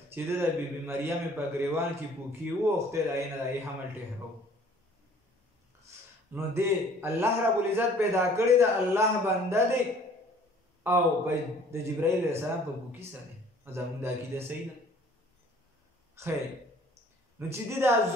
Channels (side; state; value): both; normal; correlation 0.54